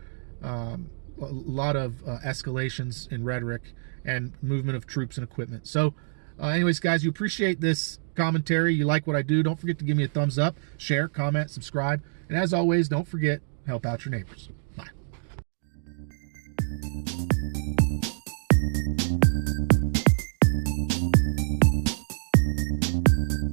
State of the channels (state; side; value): silent; left; digital silence